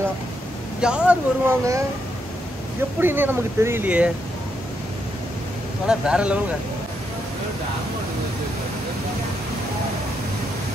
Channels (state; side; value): normal; both; correlation 0.79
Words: யார் வருவாங்க எப்படின்னே நமக்கு தெரியலையே. ஆனால் வேற லெவலுங்க.